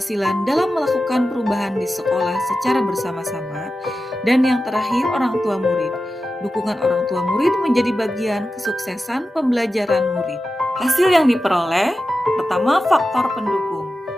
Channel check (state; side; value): normal; both; correlation 0.92